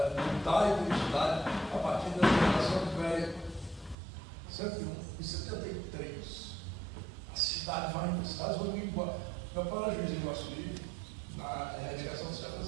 mudar a identidade a partir da geração velha. 101 e 73. As cidades vão embora. Meu pai era juiz em Iguaçuí, na erradicação dos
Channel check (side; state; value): left; drops out; at 4.0 s